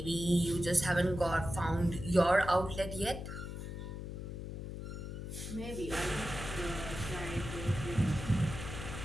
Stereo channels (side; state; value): left; noise; hum, 7 dB below the sound